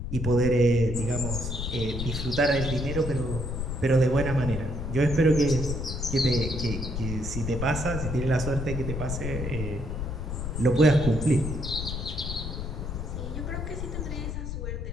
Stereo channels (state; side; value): noise; left; rumble, 4 dB below the sound